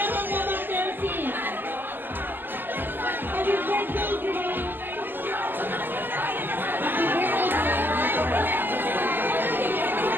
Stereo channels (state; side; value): late; left; 0.092 ms